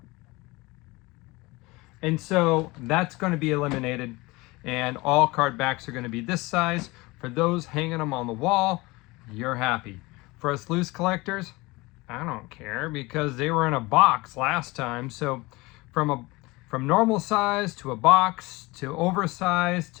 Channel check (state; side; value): quieter; right; 22.8 dB